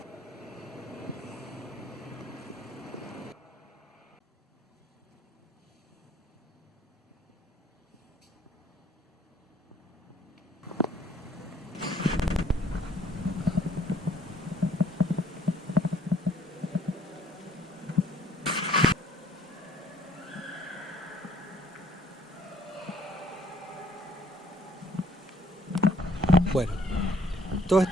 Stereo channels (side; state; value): both; normal; correlation 0.62